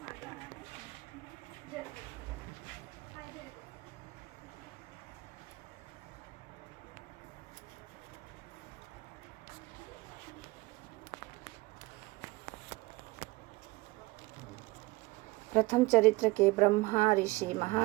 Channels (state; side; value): quieter; left; 22.3 dB